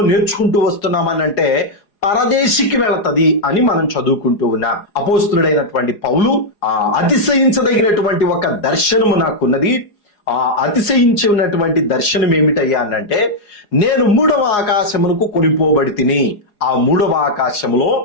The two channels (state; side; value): late; right; 4.8 ms